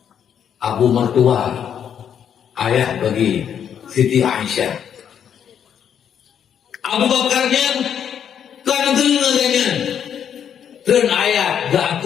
Abu mertua, ayah bagi Siti Aisyah. Abu Bakarnya kanzab dan ayat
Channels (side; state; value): right; quieter; 8.6 dB